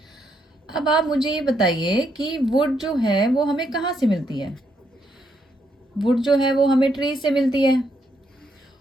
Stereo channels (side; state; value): both; normal; correlation 0.76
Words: अब आप मुझे ये बताइए कि वुड जो है वो हमें कहाँ से मिलती है? वुड जो है वो हमें ट्री से मिलती है।